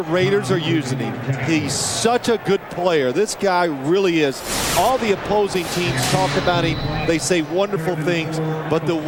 are using him, he's such a good player. This guy really is. All the opposing teams talk about him. They say wonderful things. But the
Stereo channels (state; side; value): identical; both; correlation 1.00